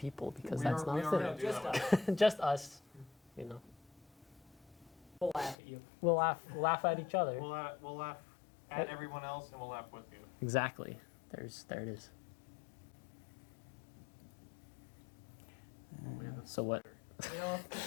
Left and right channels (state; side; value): drops out; right; at 5.6 s